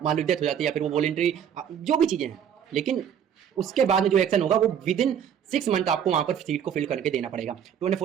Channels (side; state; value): left; quieter; 8.7 dB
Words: मान लो डेथ हो जाती है, या फिर वो वॉलंटरी, जो भी चीज़ें हैं, लेकिन उसके बाद में जो एक्शन होगा वो विद इन 6 मंथ आपको वहां पर सीट को फिल करके देना पड़ेगा।